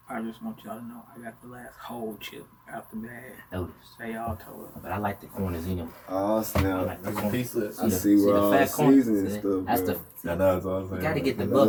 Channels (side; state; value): both; identical; correlation 1.00